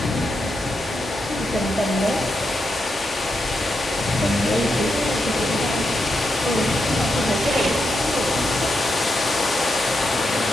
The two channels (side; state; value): both; normal; correlation 0.85